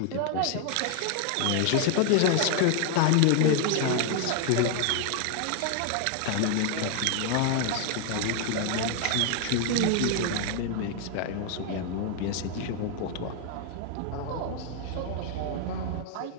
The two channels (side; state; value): both; different; correlation 0.00